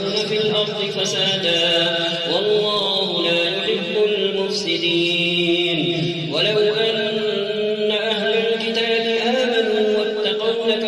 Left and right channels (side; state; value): both; identical; correlation 1.00